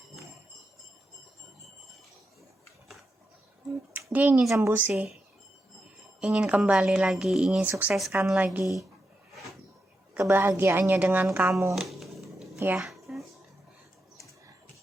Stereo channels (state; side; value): normal; both; correlation 0.86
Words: Dia ingin sembuh sih, ingin kembali lagi, ingin sukseskan lagi kebahagiaannya dengan kamu ya.